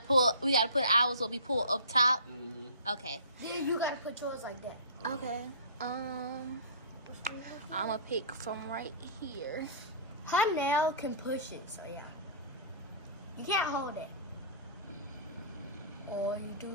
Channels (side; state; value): both; inverted; correlation -0.39